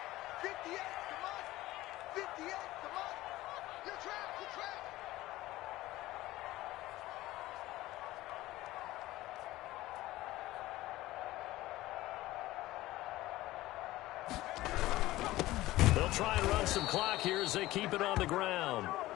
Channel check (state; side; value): quieter; right; 17.2 dB